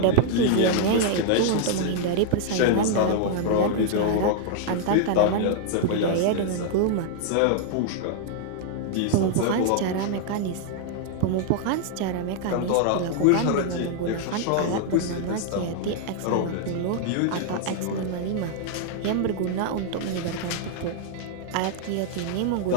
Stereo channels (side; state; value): both; different; correlation 0.00